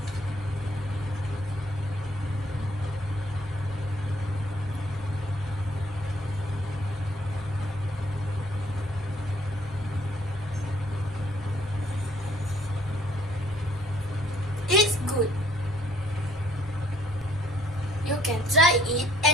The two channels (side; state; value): both; normal; correlation 0.63